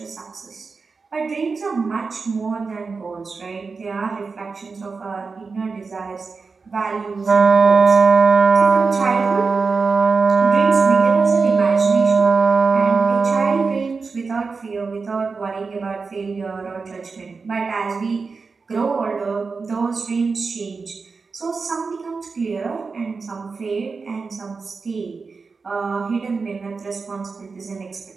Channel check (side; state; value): left; quieter; 4.6 dB